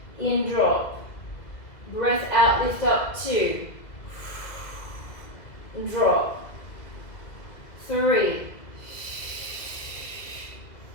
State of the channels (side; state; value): right; late; 2.0 ms